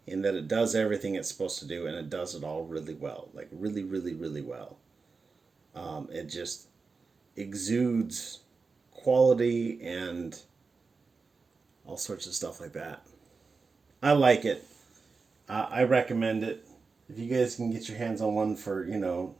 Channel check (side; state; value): left; quieter; 4.5 dB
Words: In that it does everything it's supposed to do, and it does it all really well. Like, really, really, really well. It just exudes quality and all sorts of stuff like that. I like it. I recommend it. If you guys can get your hands on one for,